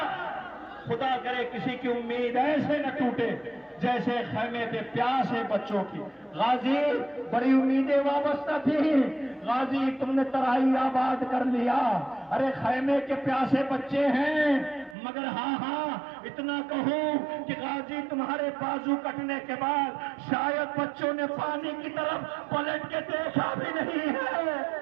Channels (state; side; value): drops out; left; at 15.0 s